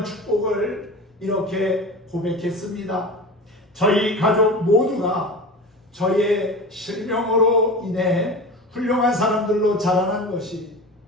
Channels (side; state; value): both; normal; correlation 0.31